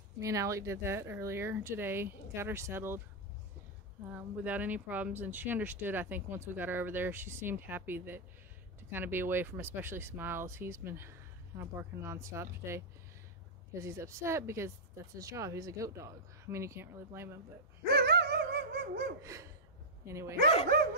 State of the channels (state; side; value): normal; both; correlation -0.07